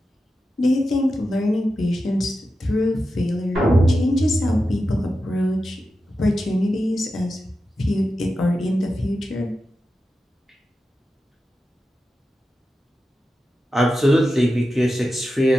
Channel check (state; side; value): normal; both; correlation 0.91